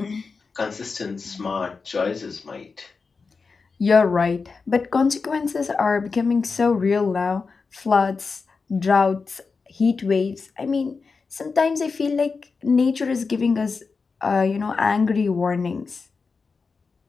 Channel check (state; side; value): quieter; right; 4.7 dB